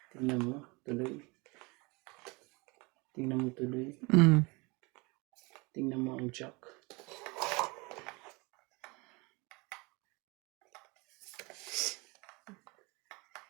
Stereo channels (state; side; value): quieter; left; 26.9 dB